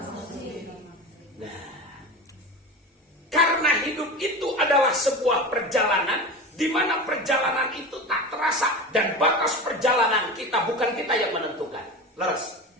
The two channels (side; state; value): both; normal; correlation 0.27